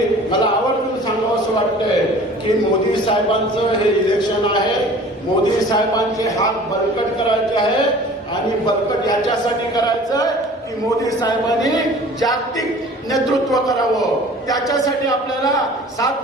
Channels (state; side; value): normal; both; correlation 0.46